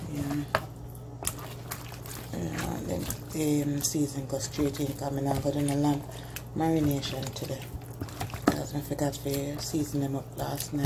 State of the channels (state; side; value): identical; both; correlation 1.00